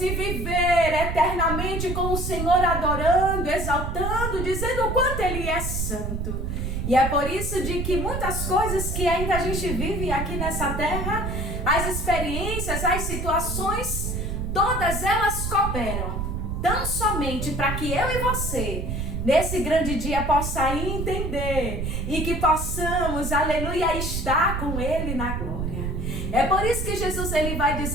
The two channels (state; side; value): noise; right; rumble, 3 dB below the sound